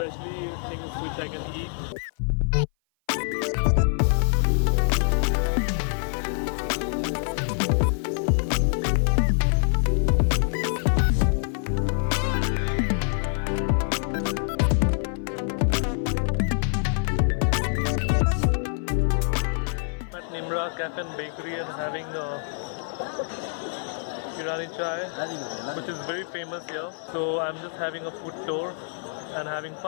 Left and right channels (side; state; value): right; silent; 57 dB below the other